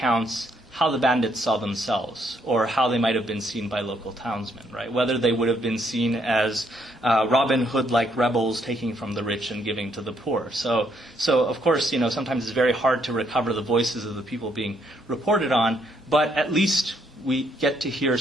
how the bandits saw themselves, or how they might have been seen by local townsmen, right? Whether they would have been seen as Robin Hood-like rebels taking from the rich and giving to the poor. So of course, sometimes it's very hard to recover the voices of the people being reported on, but at least we get to hear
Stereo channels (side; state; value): both; normal; correlation 0.71